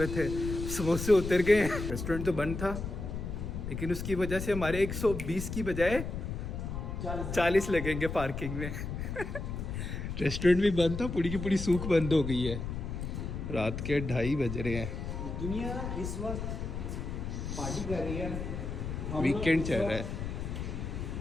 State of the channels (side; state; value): left; noise; rumble, 5 dB below the sound